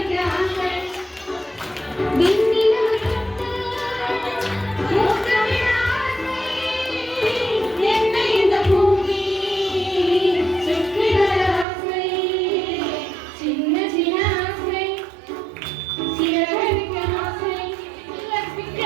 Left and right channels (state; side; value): drops out; left; at 11.7 s